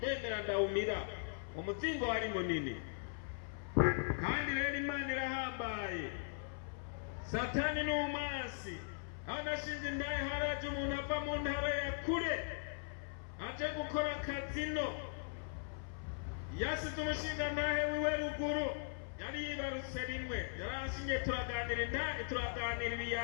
Yemera ndawumira, umuzingo wari munini, kandi rero Imana irahambaye. Satani ni umwansi. Aho nashinze intahe haraje umuntu ava mu ntara ya kure aje gukora akazino, yasize umushinga ntahe wiwe ruguru, yari yibarutse rimwe, yaranshingiye turaganira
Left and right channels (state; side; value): silent; right; 51 dB below the other